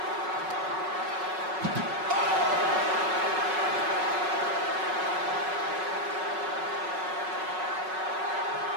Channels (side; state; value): left; late; 5.4 ms